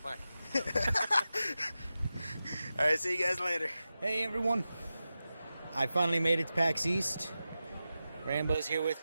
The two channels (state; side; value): inverted; both; correlation -0.93